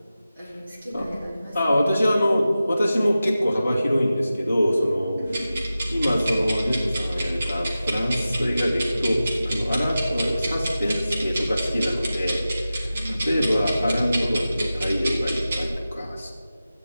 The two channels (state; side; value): inverted; both; correlation -0.94